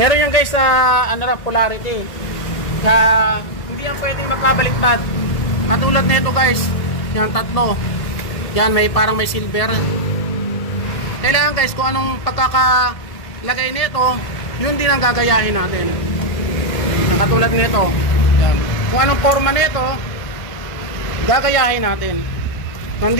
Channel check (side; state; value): right; late; 1.8 ms